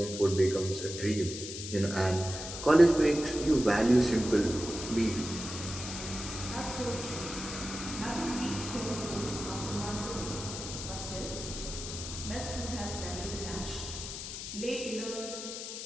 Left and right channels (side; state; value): left; noise; hiss, 7 dB below the sound